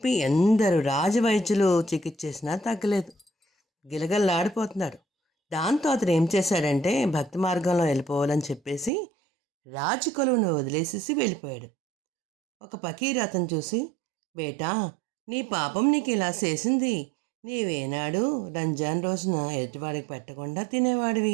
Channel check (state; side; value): drops out; left; at 8.9 s